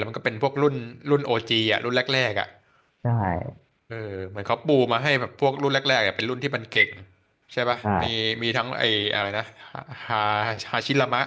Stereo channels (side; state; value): both; identical; correlation 1.00